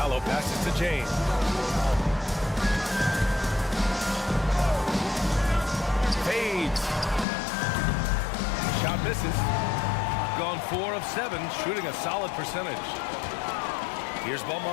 passes to James. Fades. Shot misses. Gone 4 of 7, shooting a solid percentage. Here's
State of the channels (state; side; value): drops out; right; at 7.2 s